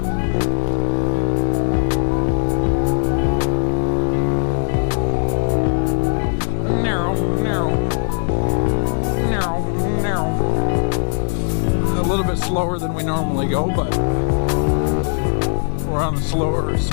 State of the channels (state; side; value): silent; right; digital silence